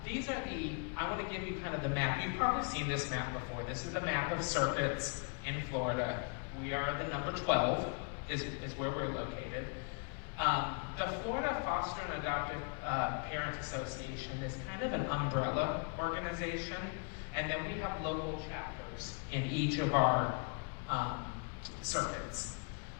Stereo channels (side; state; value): right; quieter; 39.5 dB